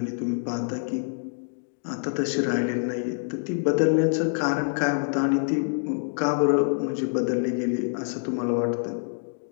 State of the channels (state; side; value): silent; right; digital silence